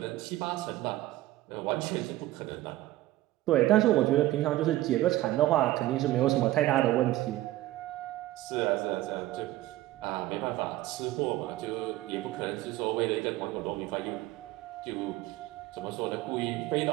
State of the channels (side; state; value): left; quieter; 16.2 dB